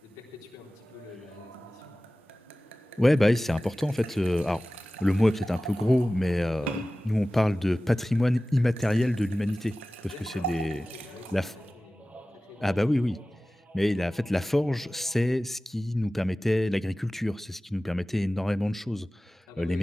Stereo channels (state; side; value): normal; both; correlation 0.97